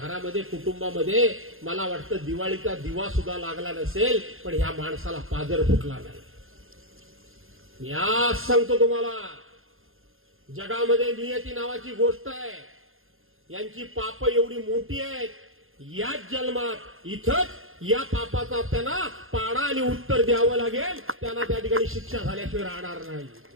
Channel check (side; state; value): left; late; 0.60 ms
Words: कुटुंबामध्ये मला वाटतं दिवाळीचा दिवा सुद्धा लागला नसेल, पण ह्या माणसाला पाजर फुटला नाही. मी आज सांगतो तुम्हाला, जगामध्ये नियती नावाची गोष्ट आहे. यांची पाप एवढी मोठी आहेत, याच जन्मात इथंच या पापाचा त्यांना पाडा आणि उत्तर द्यावं लागेल. त्यांना त्या ठिकाणी शिक्षा झाल्याशिवाय राहणार नाही.